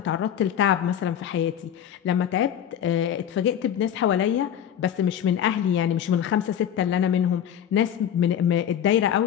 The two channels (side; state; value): right; quieter; 9.5 dB